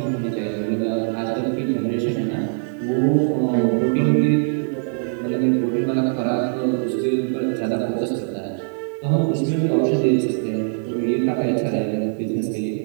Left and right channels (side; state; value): left; silent; 61 dB below the other